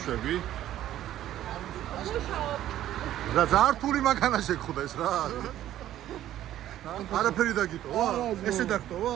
რა ზართული მანქანა შეგხვდეს რა? არაფერი დაგიტოვა? ესე დაგტოვა?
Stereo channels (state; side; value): quieter; left; 12.7 dB